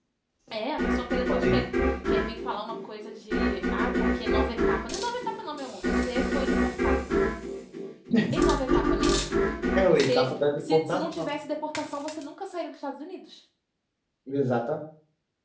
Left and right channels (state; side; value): identical; both; correlation 1.00